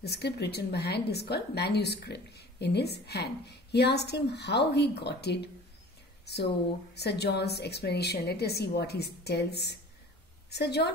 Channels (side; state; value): both; normal; correlation 0.44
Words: script written by hand is called manuscript. in his hand. He asked him how he got it. So Sir John's explanation, let us see what he tells. Sir